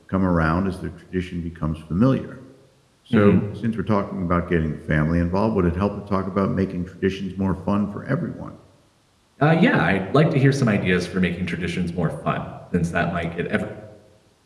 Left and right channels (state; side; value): identical; both; correlation 1.00